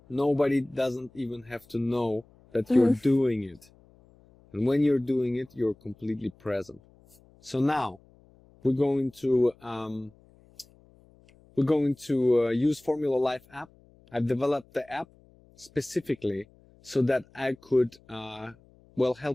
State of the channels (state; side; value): noise; left; hum, 29 dB below the sound